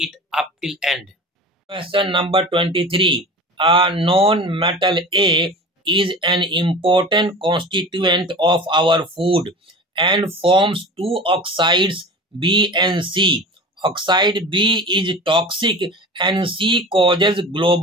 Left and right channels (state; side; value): normal; both; correlation 0.35